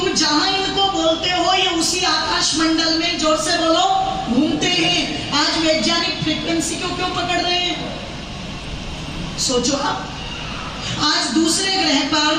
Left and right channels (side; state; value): both; identical; correlation 1.00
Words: जहां इनको बोलते हो ये उसी आकाश मंडल में, जोर से बोलो, घूमते हैं। आज वैज्ञानिक फ्रीक्वेंसी को क्यों पकड़ रहे हैं? सोचो आप, आज दूसरे ग्रह पर